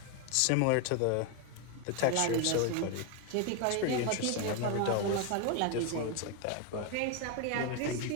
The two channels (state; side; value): different; both; correlation 0.01